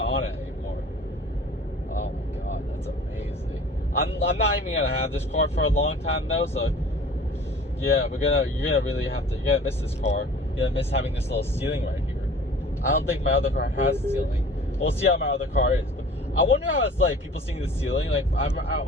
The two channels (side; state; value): both; normal; correlation 0.46